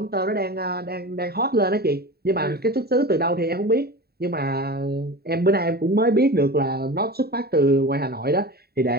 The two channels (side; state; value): left; late; 0.46 ms